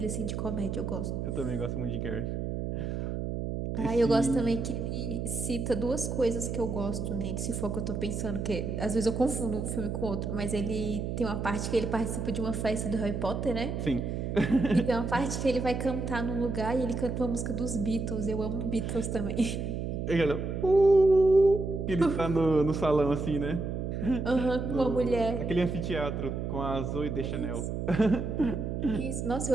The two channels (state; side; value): noise; right; hum, 3 dB below the sound